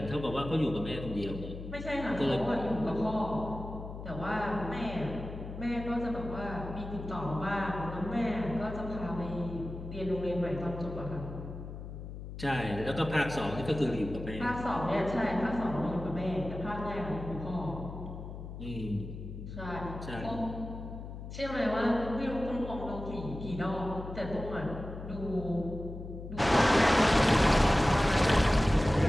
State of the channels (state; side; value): noise; left; hum, 10 dB below the sound